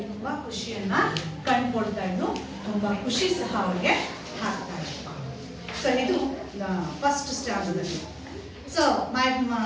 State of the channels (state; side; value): identical; both; correlation 1.00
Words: ತುಂಬಾ ಖುಷಿಯನ್ನ ಕಂಡುಕೊಳ್ತಾ ಇದ್ದು, ತುಂಬಾ ಖುಷಿ ಸಹ ಅವಳಿಗೆ ಆಗ್ತಾ ಇತ್ತು. ಸೊ ಇದು first standard. So my